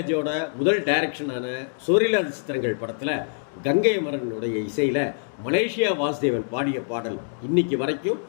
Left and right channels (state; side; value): silent; right; digital silence